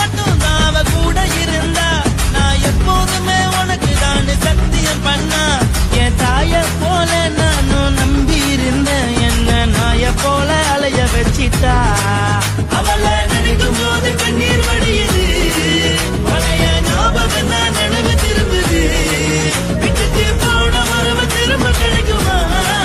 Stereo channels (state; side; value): identical; both; correlation 1.00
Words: மட்டும் தான் அவ கூட இருந்தா, நான் எப்போதுமே உனக்கு தான் சத்தியம் பண்ணா. என் தாய போல நானும் நம்பி இருந்தேன், என்ன நாய போல அலைய வச்சிட்டா. அவளை நினைக்கும் போது கண்ணீர் வடியுது, பழைய ஞாபகம் தான் நினைவு திரும்புது. விட்டுட்டு போன மரப திரும்ப கிடைக்குமா?